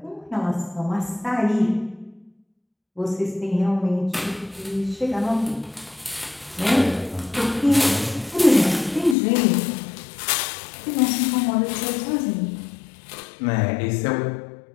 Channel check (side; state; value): right; drops out; at 9.2 s